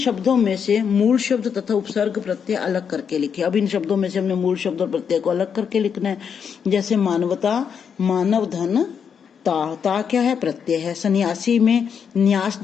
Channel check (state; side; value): quieter; right; 7.1 dB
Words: में से मूल शब्द तथा उपसर्ग प्रत्यय अलग करके लिखिए। अब इन शब्दों में से हमने मूल शब्द और प्रत्यय को अलग करके लिखना है। जैसे मानवता, मानव धन, ता क्या है? प्रत्यय है। सन्यासी में न्यास